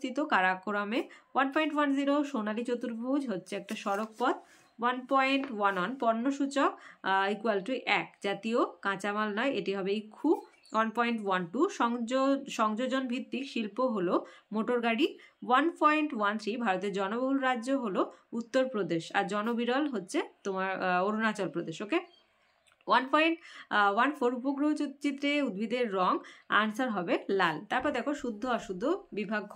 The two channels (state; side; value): identical; both; correlation 1.00